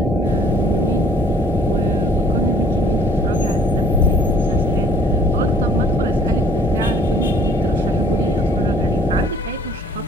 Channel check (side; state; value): both; normal; correlation 0.57